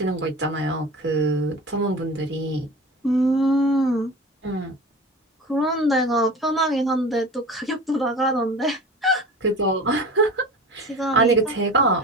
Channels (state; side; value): normal; both; correlation 0.35